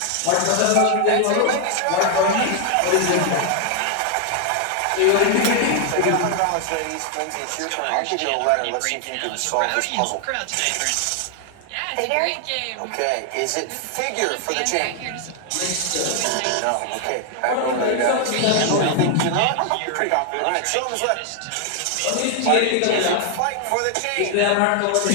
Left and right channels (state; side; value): different; both; correlation 0.00